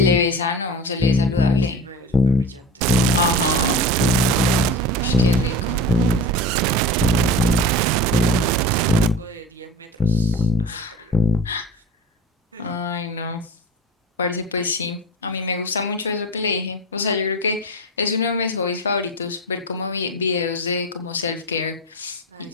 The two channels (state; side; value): normal; both; correlation 0.32